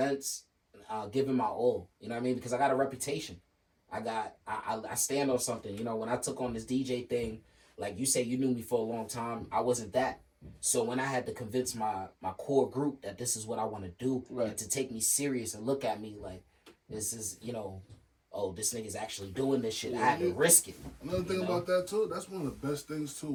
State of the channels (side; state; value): both; identical; correlation 1.00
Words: giving my all. You know what I mean? Because I got a reputation. I stand on something. When I took on this DJ thing, like you say, you knew me for a long time. I wasn't that. So when I had to convince my core group that this is what I want to do, and to take me serious and look at me like this is, this nigga's actually doing this shit. I had to risk it. Another thing about that too, that's one of the best things too.